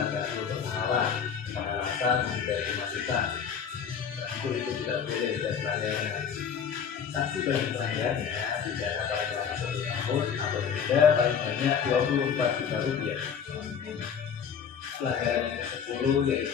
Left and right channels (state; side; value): quieter; right; 7.2 dB